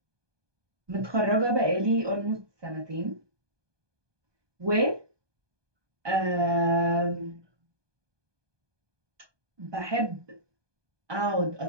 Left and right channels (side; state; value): left; late; 1.2 ms